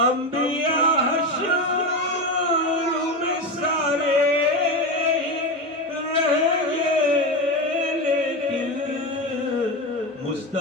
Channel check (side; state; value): both; normal; correlation 0.18